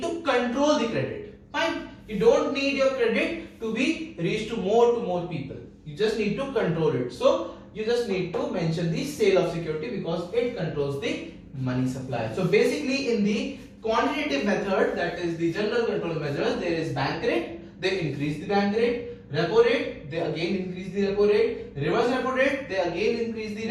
to control the credit. Fine. You don't need your credit to be reached to more people. You just need to control it. So you just need to mention the sale of security because it controls the money supply. So basically, in the quantitative method, that is the general control measures, there is bank rate. They increase the bank rate. Repo rate, they again increase the repo rate. Reverse repo rate, they again increase the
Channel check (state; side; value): identical; both; correlation 1.00